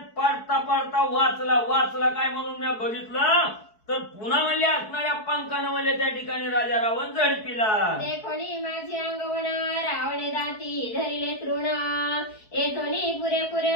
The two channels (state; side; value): late; right; 4.6 ms